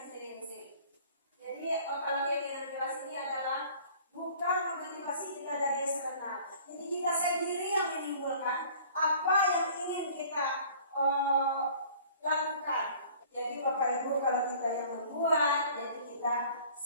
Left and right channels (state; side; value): inverted; both; correlation -0.50